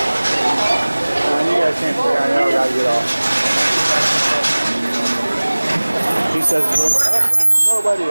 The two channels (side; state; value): both; inverted; correlation -1.00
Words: He says, nobody